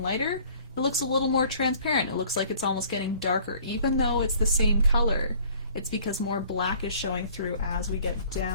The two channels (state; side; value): inverted; both; correlation -0.53